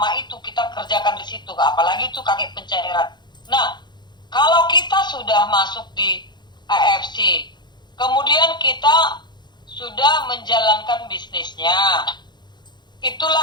itu kita kerjakan di situ, apalagi itu kaki pencairan. Nah, kalau kita sudah masuk di AFC, kemudian kita sudah menjalankan bisnisnya,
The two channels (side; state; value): right; late; 0.21 ms